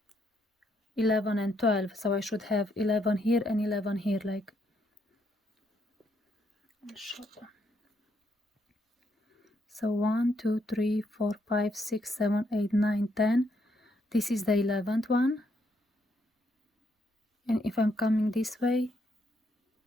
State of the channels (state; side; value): normal; both; correlation 0.75